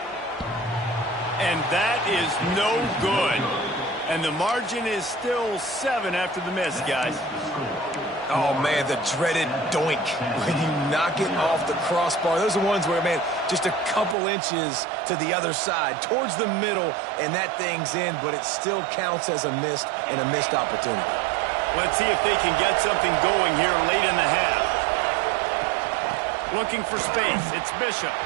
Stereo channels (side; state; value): left; drops out; at 14.2 s